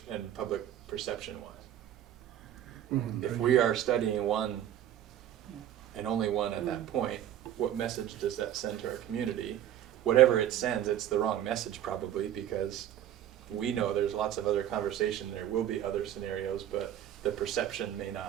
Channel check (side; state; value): left; quieter; 11.2 dB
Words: and public perception-wise. If we are studying one and only one at that point, what message does that send to our community? Whatever it sends, it's the wrong message probably, because we know there's lots of other conversation, there will be other scenarios, but the perception may